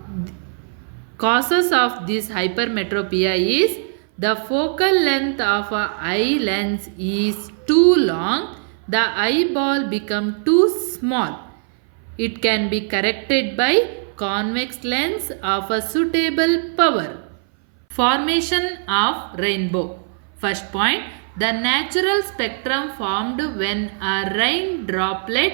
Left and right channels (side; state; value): left; silent; 61 dB below the other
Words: Causes of this hypermetropia is the focal length of an eye lens is too long, the eyeball become too small. It can be corrected by convex lens of a suitable power. Formation of rainbow. First point, the natural spectrum formed when a rain droplet